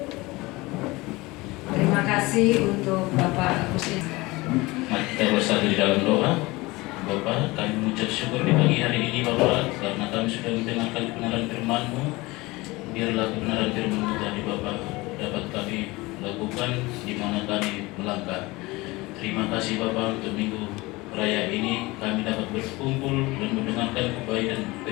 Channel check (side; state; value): right; quieter; 21.9 dB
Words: Terima kasih untuk Bapak Agustin. Mari kita bersatu di dalam doa. Bapa, kami mengucap syukur di pagi hari ini Bapa, karena kami sudah mendengarkan kebenaran firman-Mu. Biarlah kebenaran firman-Mu tadi Bapa dapat kami lakukan di mana kami melangkah. Terima kasih Bapa untuk minggu raya ini kami dapat berkumpul dan mendengarkan kebaikan